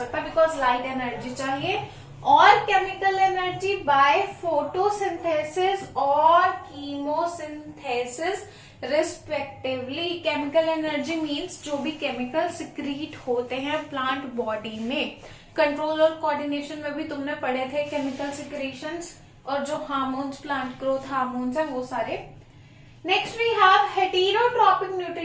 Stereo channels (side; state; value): both; identical; correlation 1.00